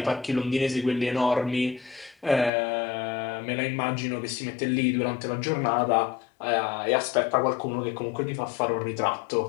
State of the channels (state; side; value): drops out; right; at 2.5 s